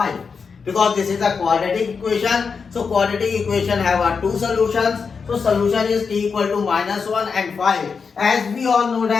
Because this is a quadratic equation. So quadratic equation have two solutions. So solution is t equal to minus 1 and 5. As we all know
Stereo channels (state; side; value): quieter; right; 5.5 dB